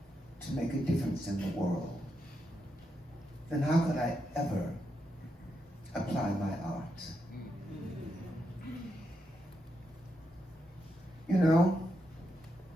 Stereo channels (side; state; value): both; normal; correlation 0.83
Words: to make a difference in the world, then how could I ever apply my art? You know,